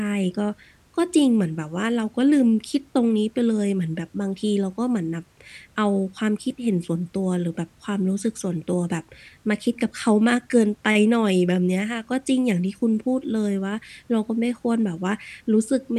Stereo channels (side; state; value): both; identical; correlation 1.00